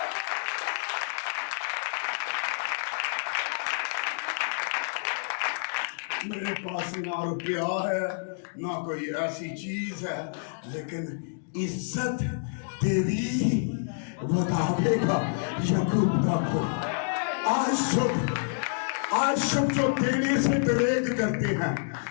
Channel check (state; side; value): silent; right; digital silence